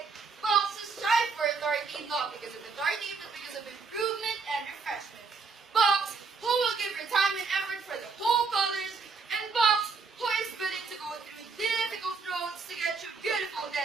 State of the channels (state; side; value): quieter; left; 4.8 dB